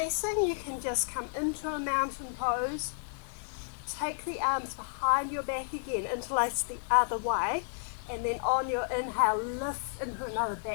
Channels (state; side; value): silent; right; digital silence